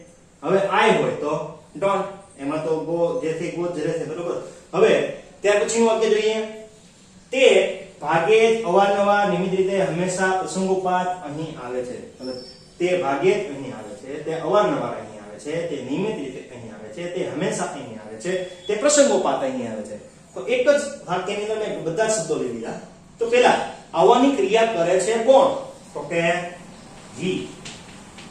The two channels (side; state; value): both; identical; correlation 1.00